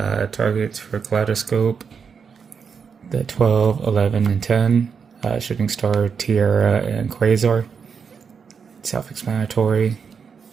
Targets for Kaleidoscope, the 12, 11, and 10. Shooting Star, Tiara, and Quasar. Self-explanatory.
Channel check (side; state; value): left; quieter; 6.2 dB